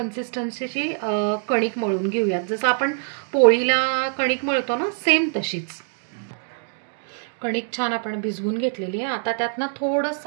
कणिक मळून घेऊया। जसं आपण पोळीला कणिक मळतो ना, सेम तशीच कणिक छान आपण भिजवून घेतलेली आहे। आता त्यात ना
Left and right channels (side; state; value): left; silent; 61 dB below the other